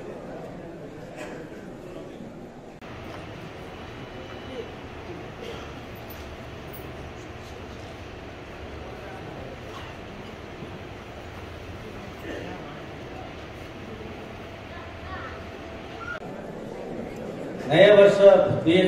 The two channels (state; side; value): identical; both; correlation 1.00